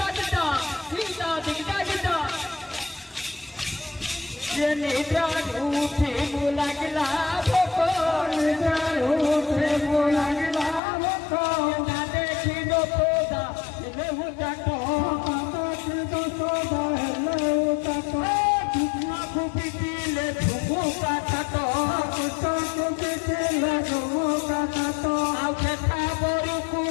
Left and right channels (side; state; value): right; drops out; at 10.8 s